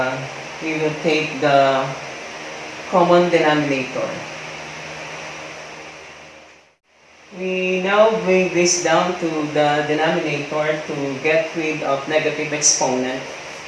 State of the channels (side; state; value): both; identical; correlation 1.00